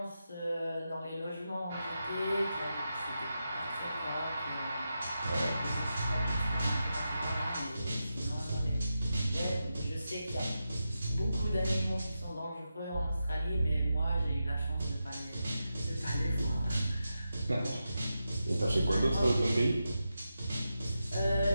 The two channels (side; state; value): both; inverted; correlation -0.89